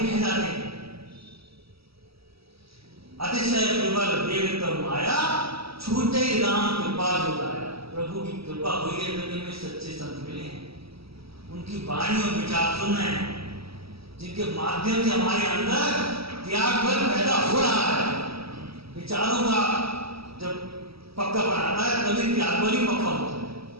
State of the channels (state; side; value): late; left; 0.76 ms